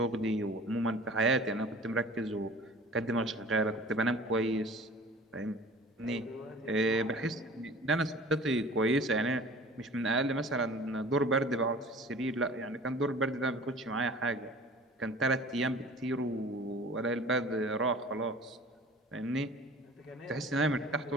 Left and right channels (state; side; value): normal; both; correlation 0.44